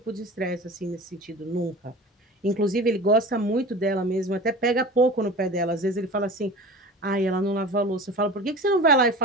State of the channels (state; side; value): normal; both; correlation 0.36